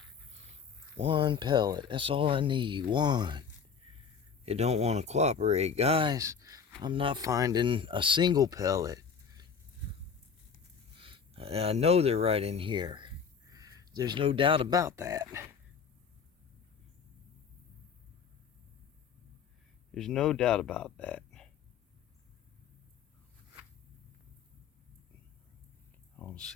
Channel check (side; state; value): right; quieter; 6.3 dB